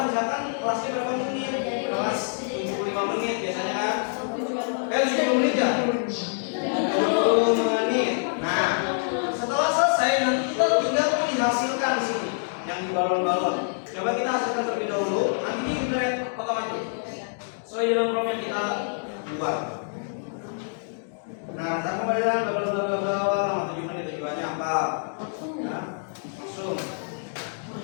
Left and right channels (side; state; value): right; silent; digital silence